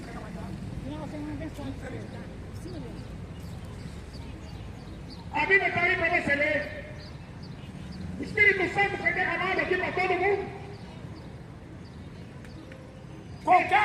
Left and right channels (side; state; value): both; identical; correlation 1.00